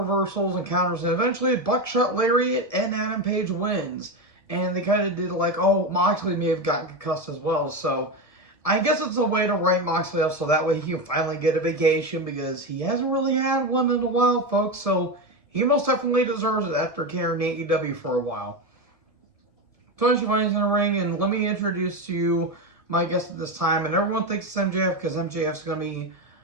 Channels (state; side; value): late; right; 1.6 ms